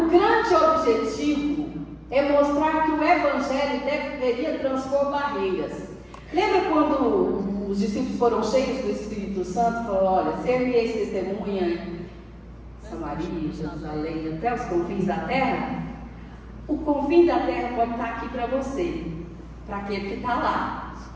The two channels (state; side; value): identical; both; correlation 1.00